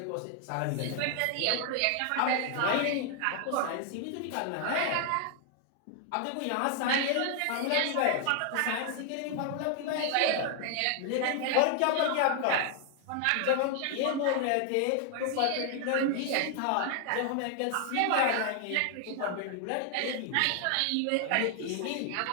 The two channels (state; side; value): different; both; correlation 0.00